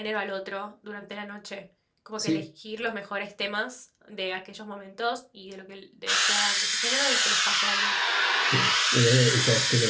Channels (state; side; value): identical; both; correlation 1.00